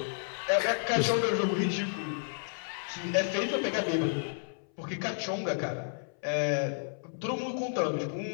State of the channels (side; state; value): right; silent; 57 dB below the other